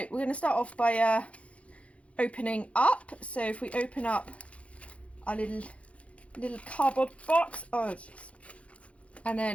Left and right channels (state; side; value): late; right; 0.063 ms